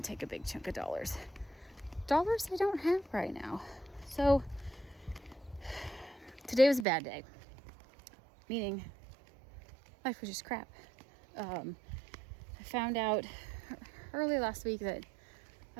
take a big chunk of dollars I don't have right now. So today was a bad day, meaning life was just crap. I found out early last week that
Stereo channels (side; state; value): left; drops out; at 6.9 s